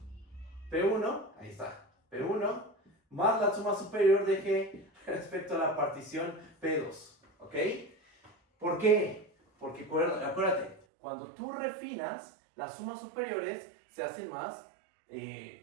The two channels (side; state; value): left; drops out; at 10.8 s